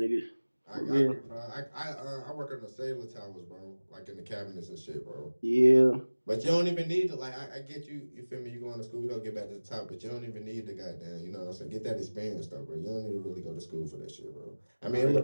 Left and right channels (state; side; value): inverted; both; correlation -1.00